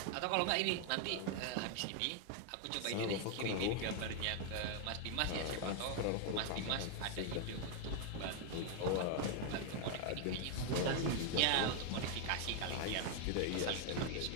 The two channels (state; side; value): different; both; correlation 0.00